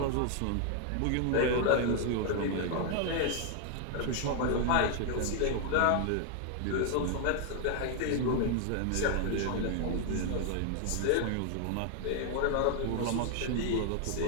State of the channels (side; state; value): both; different; correlation 0.00